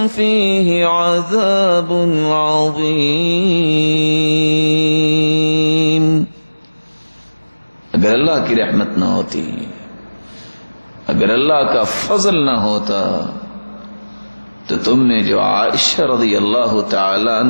فیہ عذاب عظیم۔ اگر اللہ کی رحمت نہ ہوتی، اگر اللہ کا فضل نہ ہوتا تو تم نے جو عائشہ رضی اللہ تعالی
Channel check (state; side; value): inverted; both; correlation -1.00